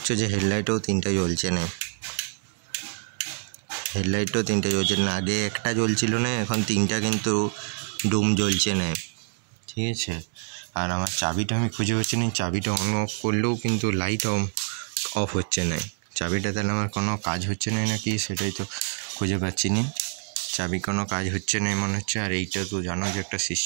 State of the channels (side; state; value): left; silent; 59 dB below the other